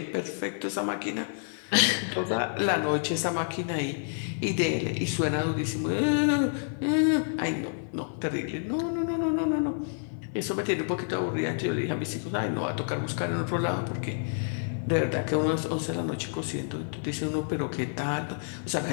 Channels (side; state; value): right; silent; 56 dB below the other